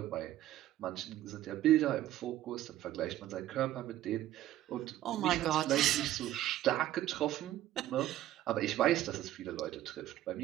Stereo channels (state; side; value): quieter; left; 13.6 dB